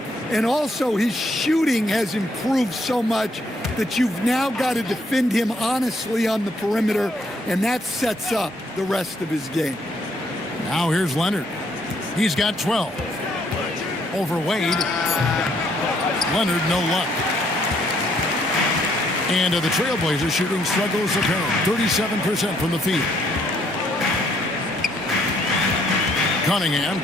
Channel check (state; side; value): normal; both; correlation 0.69